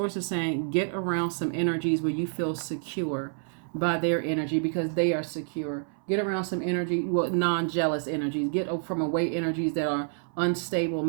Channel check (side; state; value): left; silent; 59 dB below the other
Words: is saying get around some energies where you feel secure by their energy because they are secure. Get around some energy, non-jealous energies. Get from away energies that are unstable